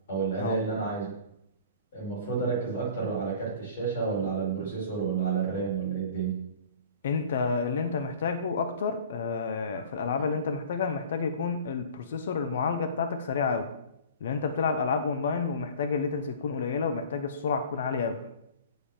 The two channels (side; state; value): both; inverted; correlation -0.43